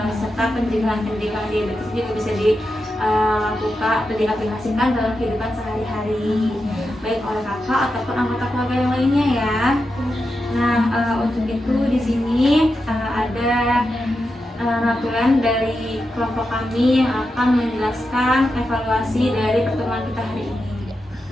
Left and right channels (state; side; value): normal; both; correlation 0.88